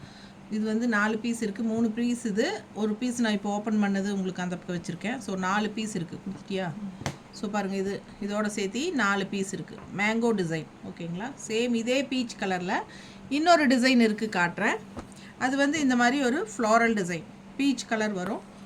இது வந்து 4 பீஸ் இருக்குது. 3 பீஸ் இது, ஒரு பீஸ் நான் இப்போ ஓப்பன் பண்ணது உங்களுக்கு அந்த பக்கம் வச்சுருக்கேன். ஸோ 4 பீஸ் இருக்குது. கொடுத்துட்டியா? ஸோ பாருங்கள், இதோட சேர்த்து 4 பீஸ் இருக்குது. மேங்கோ டிசைன், ஓகேங்களா? சேம் இதே பீச் கலரில் இன்னொரு டிசைன் இருக்குது, காட்டுறேன். அது வந்து இந்த மாதிரி ஒரு ஃப்ளாரல் டிசைன், பீச் கலர் வரும்.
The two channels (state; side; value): identical; both; correlation 1.00